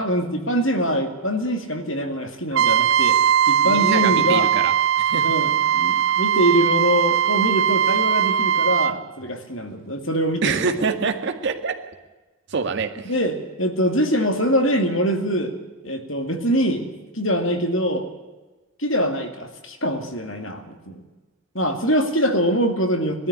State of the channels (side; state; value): left; quieter; 3.5 dB